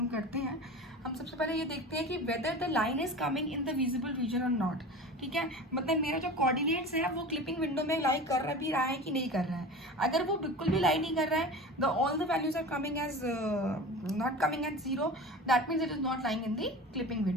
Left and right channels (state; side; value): normal; both; correlation 0.33